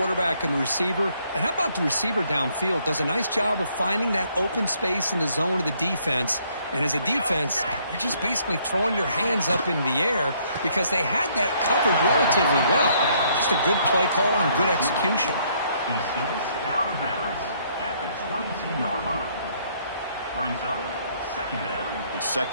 and the receiver. And how about the receiver downfield? Does a nice job of finding that open space in the zone of the defense. And as a defense, you're just basically throwing your hands up in the air because they had that covered relatively well. Just a good play call and good execution. He steps out of bounds at the 22-yard line. Brings up 2nd down. It's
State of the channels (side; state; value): both; inverted; correlation -0.67